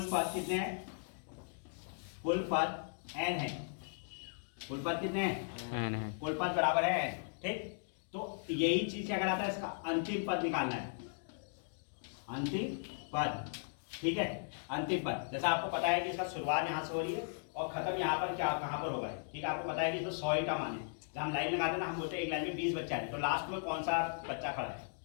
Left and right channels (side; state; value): right; silent; digital silence